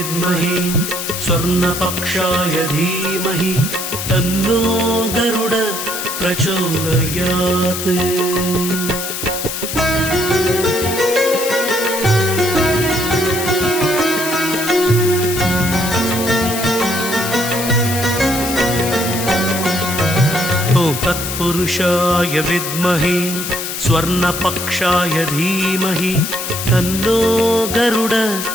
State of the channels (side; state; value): left; noise; hiss, 5 dB below the sound